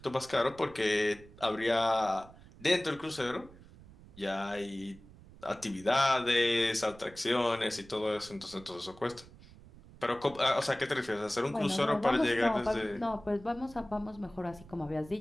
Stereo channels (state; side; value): noise; right; rumble, 21 dB below the sound